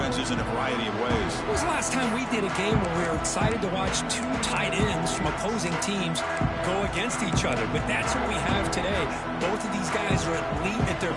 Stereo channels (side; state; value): both; identical; correlation 1.00